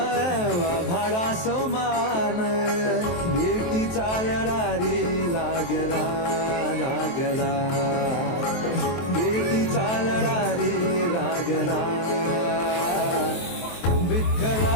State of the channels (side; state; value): right; late; 23 ms